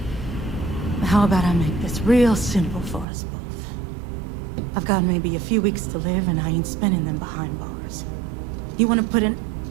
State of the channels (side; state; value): left; drops out; at 3.1 s